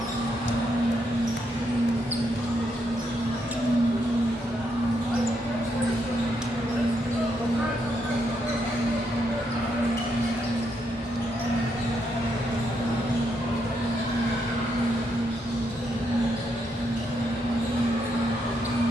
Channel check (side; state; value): both; normal; correlation 0.78